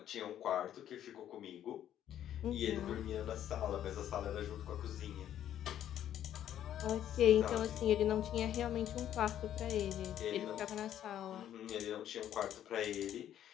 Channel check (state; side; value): quieter; right; 11.0 dB